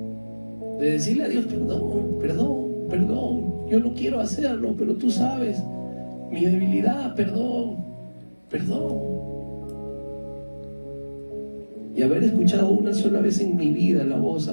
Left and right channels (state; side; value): inverted; both; correlation -1.00